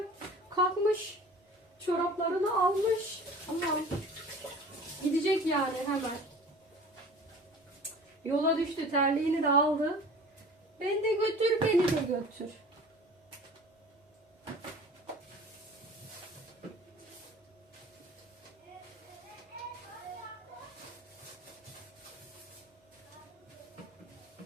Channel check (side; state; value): both; normal; correlation 0.43